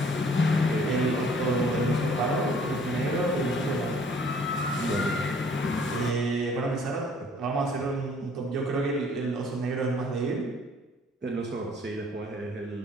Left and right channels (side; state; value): both; normal; correlation 0.57